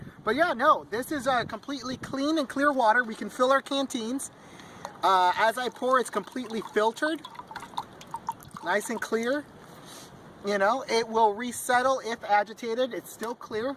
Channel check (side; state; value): both; identical; correlation 1.00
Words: But yeah, no, this is completely clean and clear water. We can fill our canteens. As I pour, it's completely filtered. Nice and clear. You know, it will resettle if agitated. It's still clear.